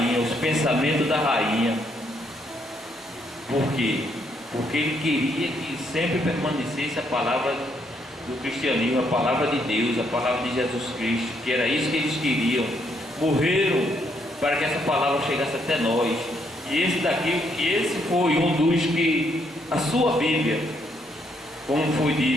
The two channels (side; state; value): both; normal; correlation 0.73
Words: os pensamentos da rainha. Por quê? Porque ele queria que sempre permanecesse a palavra do cristianismo, a palavra de Deus, a palavra de Jesus Cristo, que era isso que eles queriam. Morreram para que essa palavra chegasse até nós. E esse foi um dos que a sua Bíblia, como foi